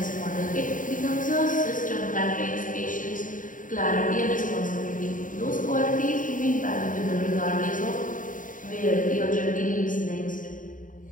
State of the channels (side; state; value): right; late; 0.38 ms